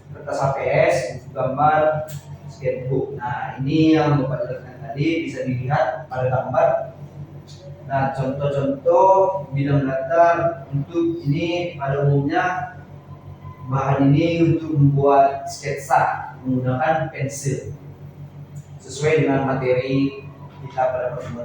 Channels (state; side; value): identical; both; correlation 1.00